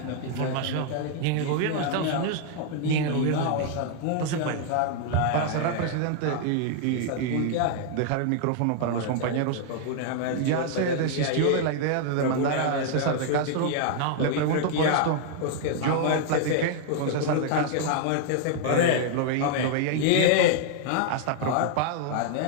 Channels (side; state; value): both; different; correlation 0.00